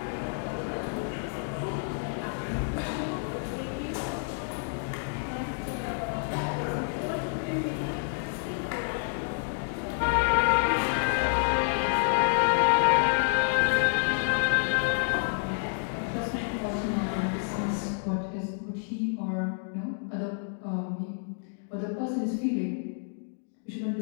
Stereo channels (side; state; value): right; silent; digital silence